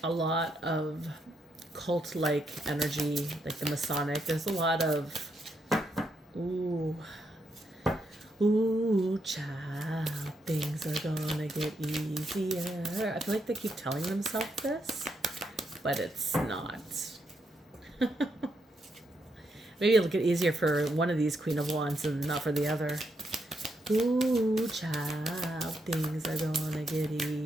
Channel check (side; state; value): both; normal; correlation 0.79